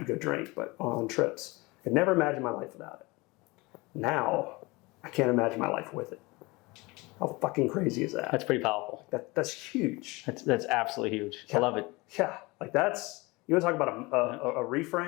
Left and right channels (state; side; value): quieter; right; 23.9 dB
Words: go drink, but on trips. I could never imagine my life without it. Now, I can't imagine my life with it. How fucking crazy is that? That's pretty powerful. That's huge. That's absolutely huge. I love it. Yeah, like, that's, you want to talk about a